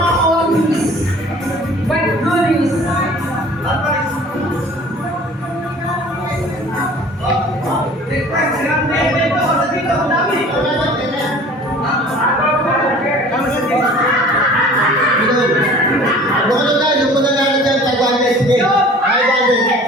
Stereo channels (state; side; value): normal; both; correlation 0.46